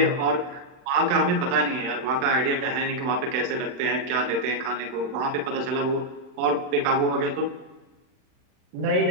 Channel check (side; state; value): left; late; 39 ms